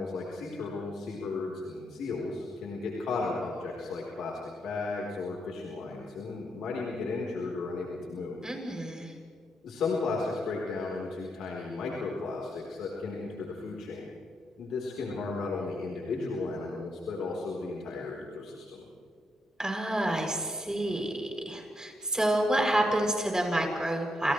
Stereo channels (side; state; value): both; normal; correlation 0.79